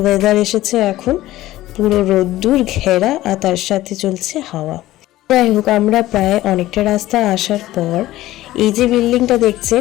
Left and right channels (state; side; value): quieter; right; 15.8 dB